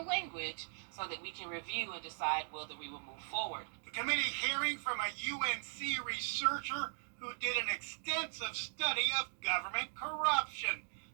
so that we can review and decide whether we will move forward. The committee hearing from a UNC researcher who did an extensive study of government corruption.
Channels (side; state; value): left; silent; digital silence